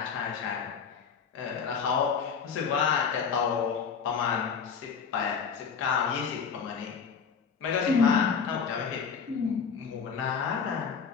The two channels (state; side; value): quieter; right; 6.2 dB